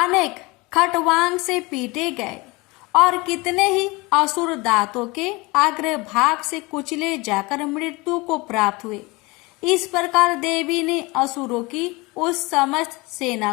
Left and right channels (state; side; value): quieter; right; 24.3 dB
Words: खटवांग से पीटे गए और कितने ही असुर दांतों के अग्रभाग से कुचले जाकर मृत्यु को प्राप्त हुए। इस प्रकार देवी ने असुरों की उस समस्त सेना